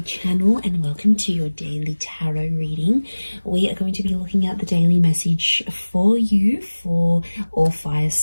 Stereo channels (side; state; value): both; inverted; correlation -1.00